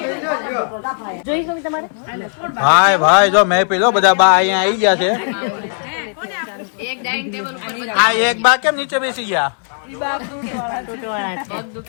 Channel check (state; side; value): silent; right; digital silence